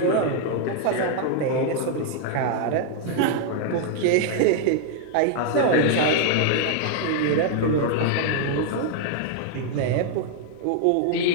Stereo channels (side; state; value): both; different; correlation 0.00